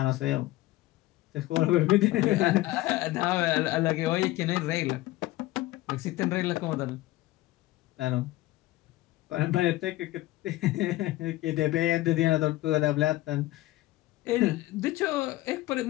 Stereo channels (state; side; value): quieter; right; 17.3 dB